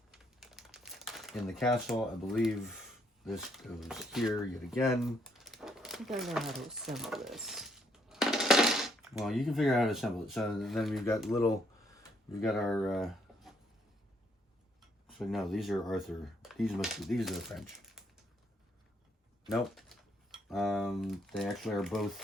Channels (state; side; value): normal; both; correlation 0.70